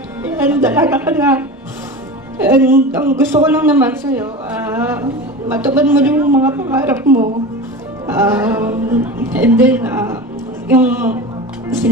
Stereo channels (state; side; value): normal; both; correlation 0.30